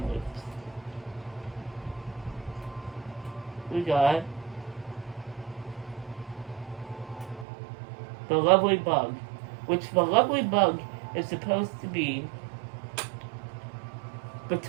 loops. We got the Lovely Bug, which the Lovely Bug is supposed to be the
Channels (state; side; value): drops out; left; at 7.5 s